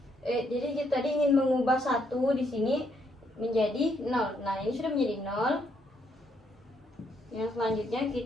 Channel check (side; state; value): both; normal; correlation 0.73